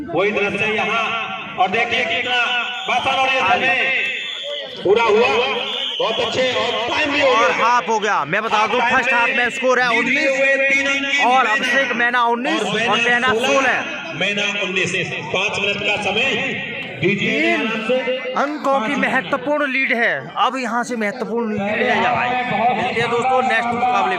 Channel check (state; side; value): identical; both; correlation 1.00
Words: वही दृश्य यहाँ, और देखिए कितना बासन और ये समय पूरा हुआ। बहुत अच्छे और टाइम भी और हाफ हो गया। मैं बता दूं फर्स्ट हाफ में स्कोर है 19 और अभिषेक मैना 19 और मैना 16। मैना 19, 5 मिनट का समय। 3 अंकों की महत्वपूर्ण लीड है। अब यहाँ से महत्वपूर्ण लीड है। मिलते हैं दोस्तों नेक्स्ट मुकाबले